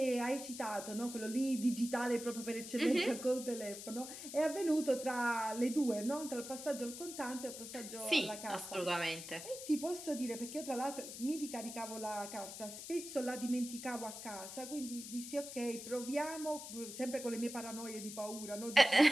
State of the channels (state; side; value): noise; left; hiss, 10 dB below the sound